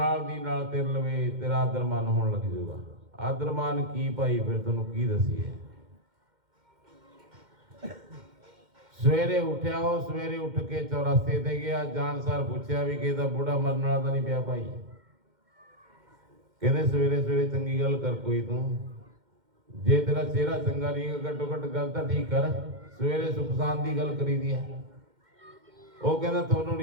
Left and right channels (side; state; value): left; late; 2.1 ms